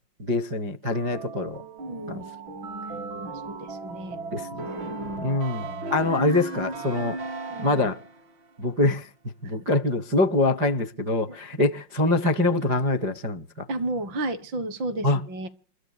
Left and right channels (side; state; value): left; late; 5.6 ms